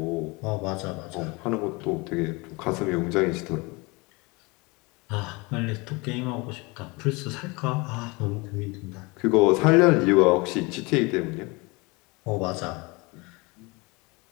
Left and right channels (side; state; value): right; quieter; 26.4 dB